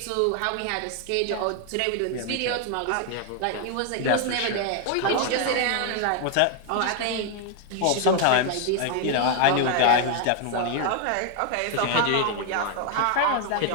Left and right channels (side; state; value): both; different; correlation 0.00